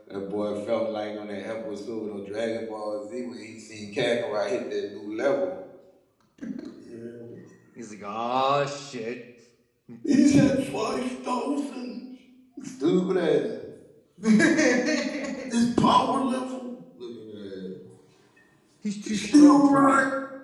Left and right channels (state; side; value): identical; both; correlation 1.00